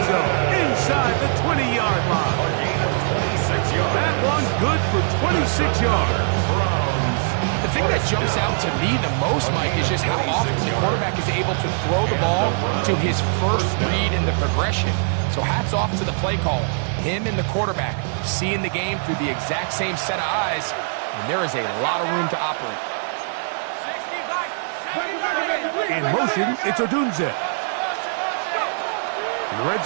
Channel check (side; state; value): left; silent; 64 dB below the other